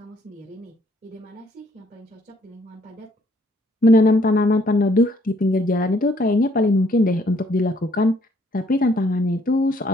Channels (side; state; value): both; normal; correlation 0.65